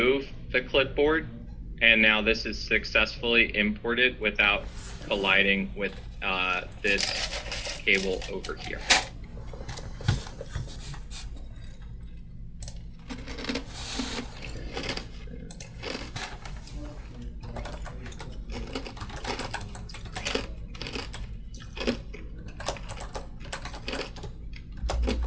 the clipboard, and now this is successfully imported without colliding with this cable over here.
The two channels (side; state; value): both; identical; correlation 1.00